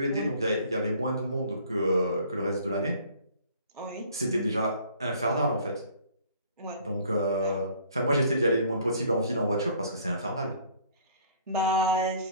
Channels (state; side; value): inverted; both; correlation -0.54